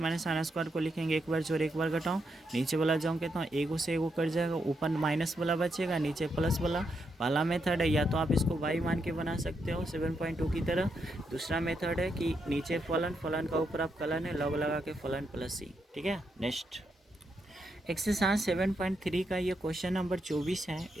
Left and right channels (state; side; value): normal; both; correlation 0.81